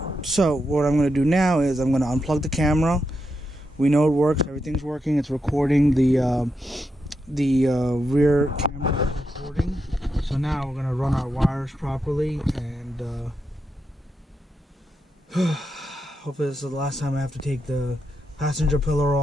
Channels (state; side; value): normal; both; correlation 0.85